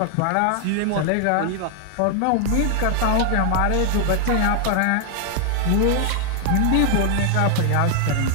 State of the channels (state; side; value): different; both; correlation 0.00